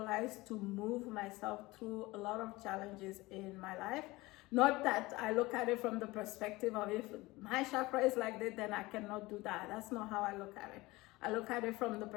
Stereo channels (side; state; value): right; quieter; 20.9 dB